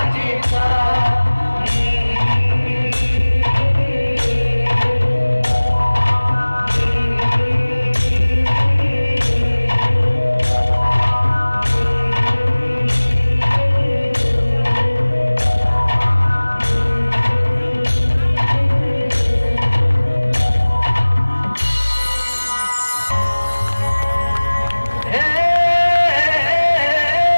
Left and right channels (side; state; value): both; inverted; correlation -1.00